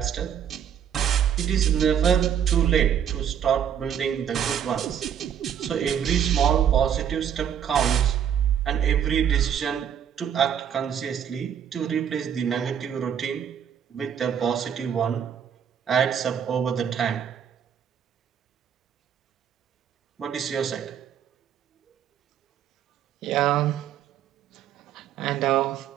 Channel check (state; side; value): quieter; left; 8.8 dB